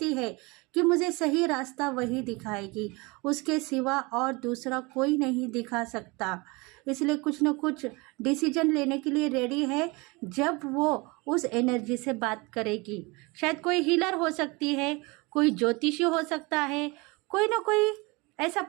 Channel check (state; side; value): quieter; left; 26.0 dB